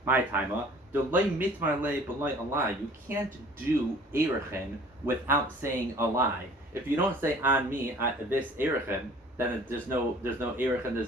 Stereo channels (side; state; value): both; normal; correlation 0.50